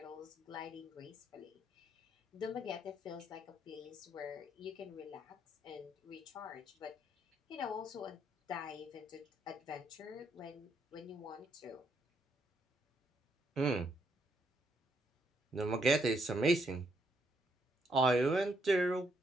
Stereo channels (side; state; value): both; normal; correlation 0.74